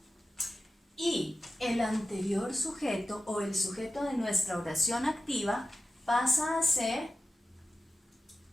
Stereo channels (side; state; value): both; normal; correlation 0.93